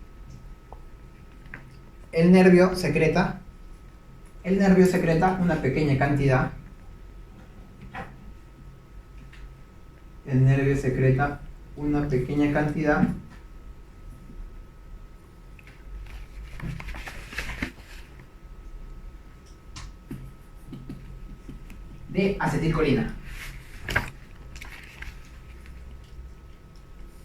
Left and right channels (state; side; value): identical; both; correlation 1.00